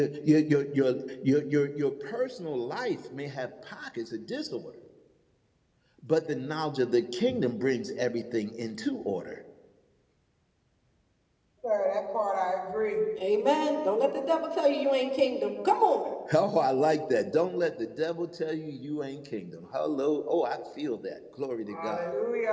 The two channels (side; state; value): both; identical; correlation 1.00